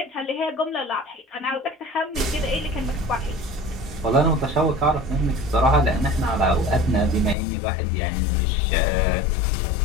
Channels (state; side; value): drops out; right; at 7.4 s